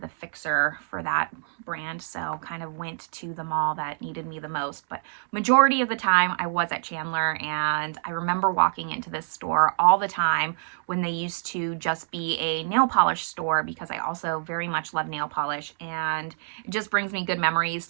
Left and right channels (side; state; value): left; silent; digital silence